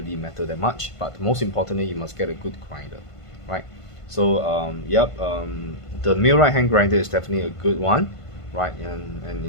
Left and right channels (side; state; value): right; late; 1.5 ms